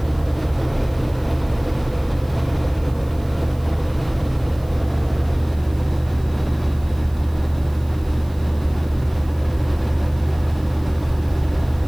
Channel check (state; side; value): noise; right; hiss, 26 dB below the sound